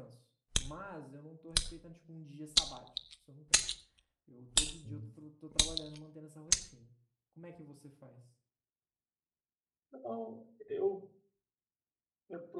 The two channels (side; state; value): both; identical; correlation 1.00